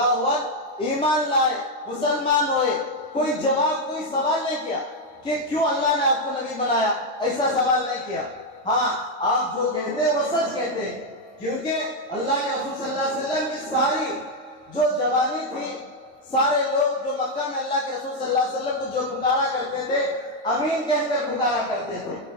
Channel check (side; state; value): both; normal; correlation 0.02